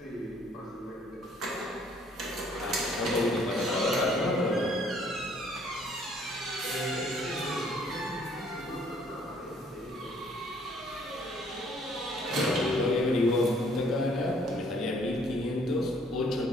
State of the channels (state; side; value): normal; both; correlation 0.61